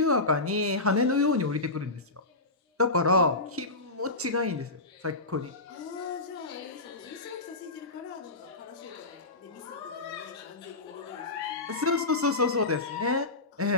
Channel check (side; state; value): right; quieter; 3.1 dB